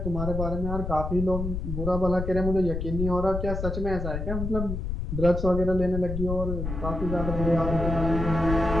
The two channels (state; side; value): noise; left; rumble, 4 dB below the sound